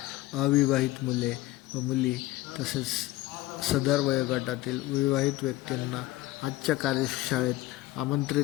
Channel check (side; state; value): right; quieter; 17.3 dB